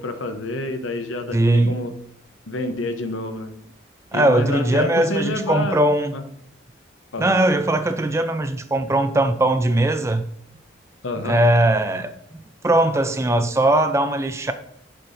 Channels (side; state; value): both; normal; correlation 0.66